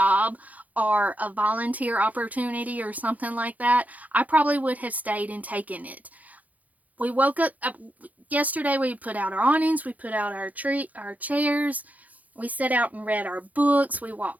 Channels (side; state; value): left; late; 0.077 ms